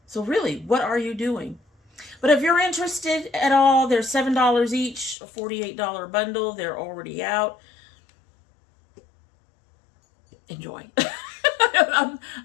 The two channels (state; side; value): drops out; right; at 5.2 s